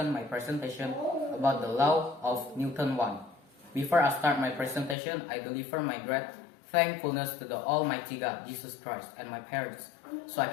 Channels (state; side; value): drops out; right; at 5.0 s